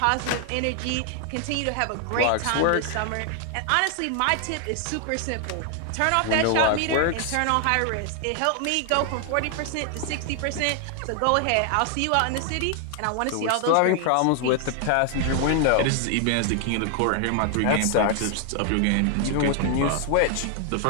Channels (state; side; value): different; both; correlation 0.00